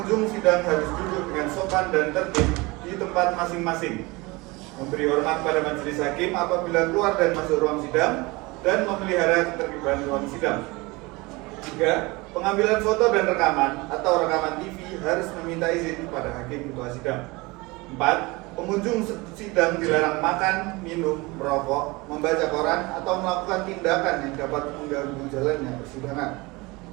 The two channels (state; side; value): quieter; left; 23.9 dB